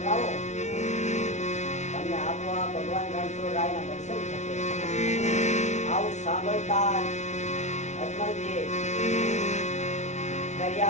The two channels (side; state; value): right; late; 0.33 ms